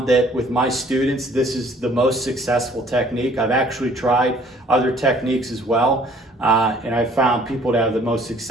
that with my students, this is the most successful technique. I've actually tried other techniques as well. And I've found people to have the most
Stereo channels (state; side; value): normal; both; correlation 0.57